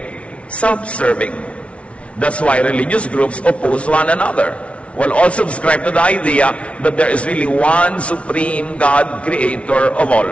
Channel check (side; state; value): right; late; 0.062 ms